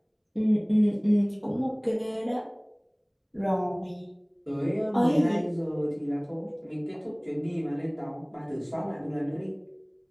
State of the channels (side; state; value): both; identical; correlation 1.00